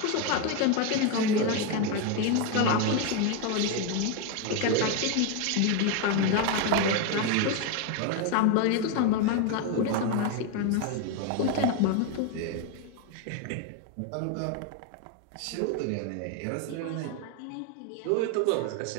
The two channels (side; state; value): both; different; correlation 0.02